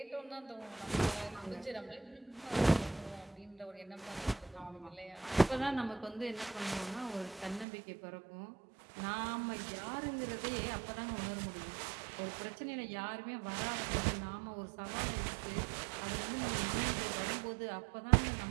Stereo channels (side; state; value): left; drops out; at 7.7 s